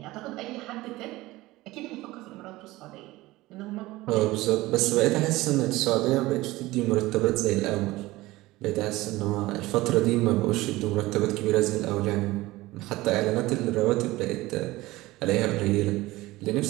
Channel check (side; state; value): left; quieter; 18.9 dB